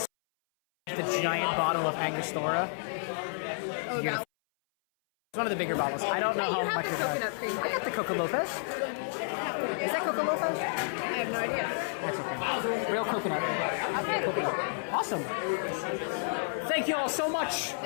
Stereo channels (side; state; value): right; silent; 57 dB below the other